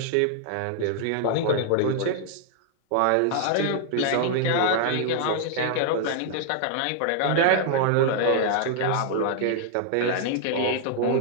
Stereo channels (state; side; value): different; both; correlation -0.01